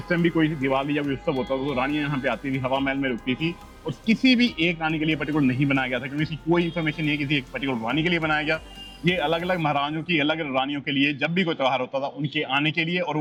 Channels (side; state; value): both; identical; correlation 1.00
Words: टाइम भी कोई दिवाली या कोई उत्सव होता था तो रानियां यहाँ पे आती थी, हवा महल में रुकती थी, और किसी भी एक रानी के लिए पर्टिकुलर नहीं बनाया गया था, क्योंकि इसकी कोई इन्फॉर्मेशन नहीं है किसी एक पर्टिकुलर रानी के लिए बनाया गया। ये अलग अलग महारानियों की अलग रानियों के लिए, जब भी कोई त्यौहार होता था उनके आने के लिए, और